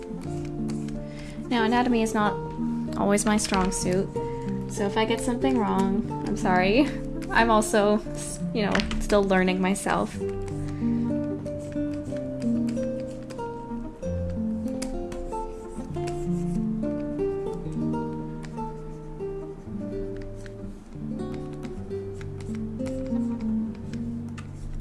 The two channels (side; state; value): both; identical; correlation 1.00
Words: Now, anatomy is not always my strong suit, so if I get something wrong, I'm sorry. I'm also, you know, still learning myself.